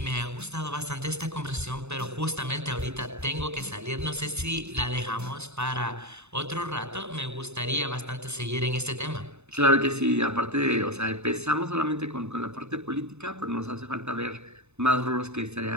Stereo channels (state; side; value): late; left; 0.81 ms